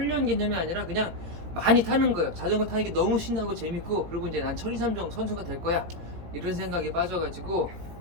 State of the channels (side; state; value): left; late; 18 ms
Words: 개념이 아니라 그냥 많이 타는 거예요. 자전거 타는 게 너무 신나고 재밌고, 그리고 이제 난 천리삼종 선수가 될 거야 이런 생각에 빠져가지고